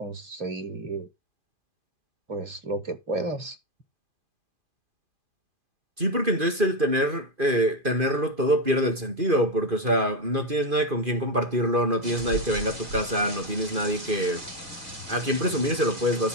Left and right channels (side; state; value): left; late; 2.5 ms